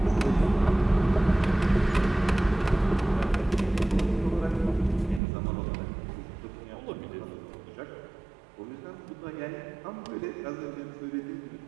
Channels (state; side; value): drops out; left; at 5.2 s